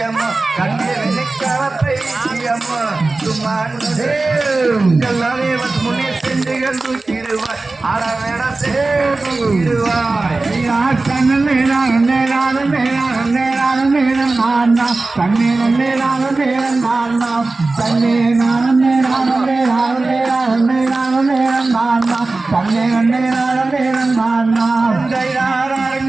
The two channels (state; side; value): quieter; left; 3.4 dB